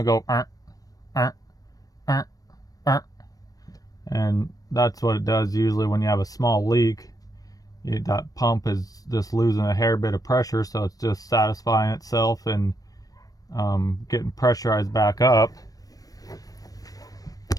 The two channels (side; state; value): right; late; 0.18 ms